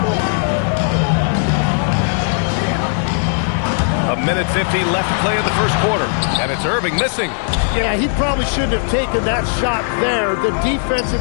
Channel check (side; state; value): right; silent; 64 dB below the other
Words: A minute 50 left to play in the first quarter, and it's Irving missing. Yeah, he probably shouldn't have taken that shot there. The